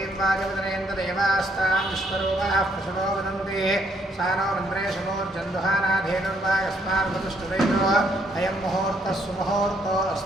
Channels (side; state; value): both; normal; correlation 0.70